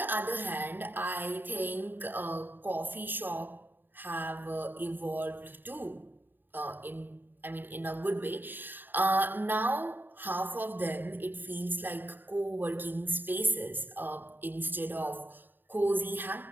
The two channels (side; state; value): left; late; 0.092 ms